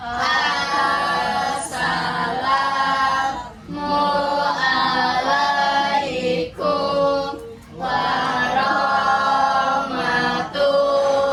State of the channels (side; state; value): both; identical; correlation 1.00